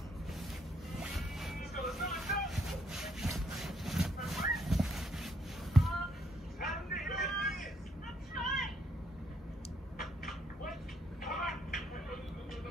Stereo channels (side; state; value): both; normal; correlation 0.71